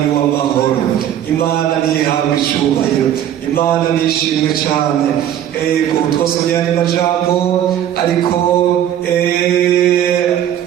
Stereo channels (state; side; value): quieter; left; 10.7 dB